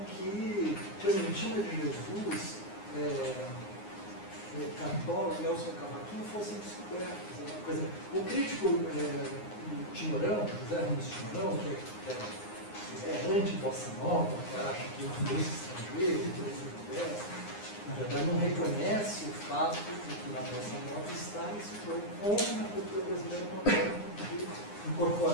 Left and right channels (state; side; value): late; right; 9.7 ms